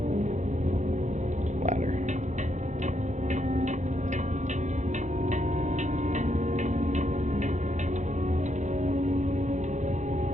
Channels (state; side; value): late; left; 0.35 ms